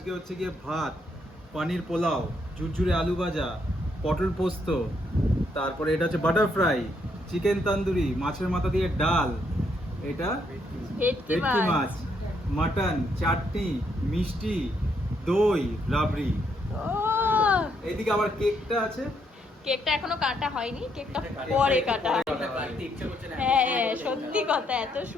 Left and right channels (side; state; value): both; normal; correlation 0.74